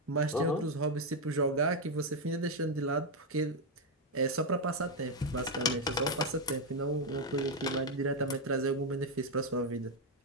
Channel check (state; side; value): normal; both; correlation 0.03